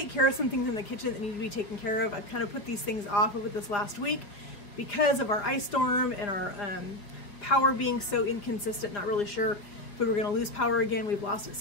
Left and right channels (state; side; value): late; right; 5.0 ms